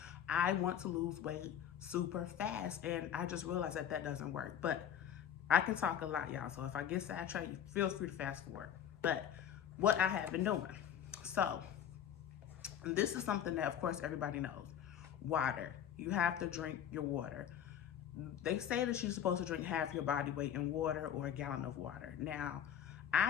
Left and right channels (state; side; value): quieter; right; 9.3 dB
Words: I want to lose weight super fast, and I just realized that that doesn't work. But I can talk a lot, y'all, so if I get sidetracked, feel free to fast forward. But what I have been doing. So this is something that, of course, everybody knows. Water. You have to drink your water. They say that you're supposed to drink half your body weight in water or a gallon of water. Now,